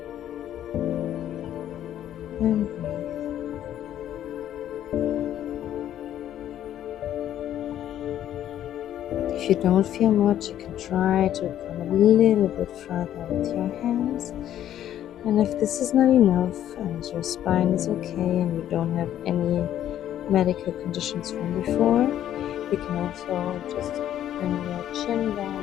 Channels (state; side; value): quieter; right; 11.4 dB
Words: And breathe. If you don't feel much, you can try to come a little bit further with your hands. And if this is not enough and your spine is okay and you don't have any medical conditions from before, you can also just bring your chin